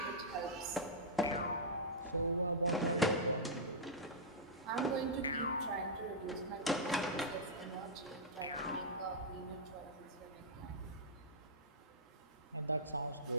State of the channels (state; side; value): normal; both; correlation -0.09